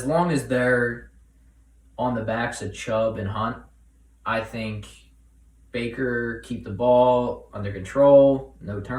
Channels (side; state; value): both; identical; correlation 1.00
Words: long as they're on the backs of Chubb and Hunt, I think Baker keep the ball under control, no